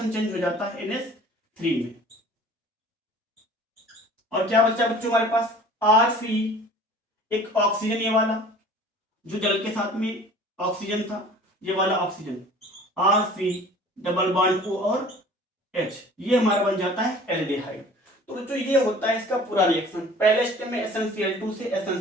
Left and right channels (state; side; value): normal; both; correlation 0.47